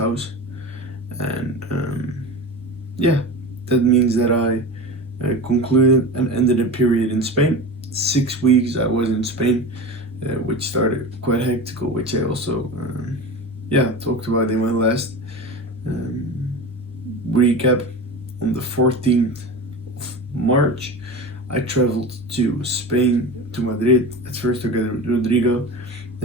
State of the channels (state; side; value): normal; both; correlation 0.29